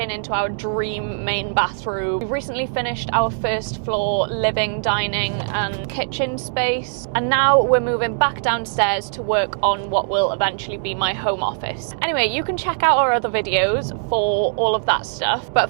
into our dream main bathroom. We've recently finished our first floor living, dining and kitchen space, and now we're moving back downstairs to work on what will eventually be my home office. Anyway, you can check out our other videos for all of that stuff,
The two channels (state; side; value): silent; left; digital silence